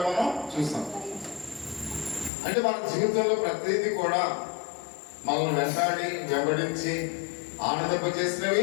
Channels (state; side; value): drops out; right; at 2.3 s